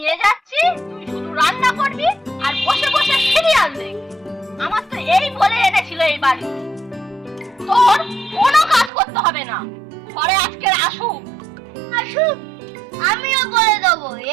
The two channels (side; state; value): left; drops out; at 8.9 s